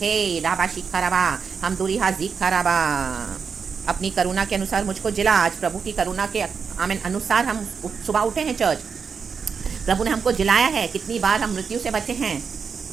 राबा शिखा रबा, हम दूरी हाजिखा रबा। अपनी करुणा के अनुसार मुझको जिला। आज प्रभु की करुणा के आमीन अनुसार हम सुबह उठे हैं चर्च, प्रभु ने हमको जिलाया है। कितनी बार हम मृत्यु से बचे हैं,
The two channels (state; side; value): quieter; left; 5.9 dB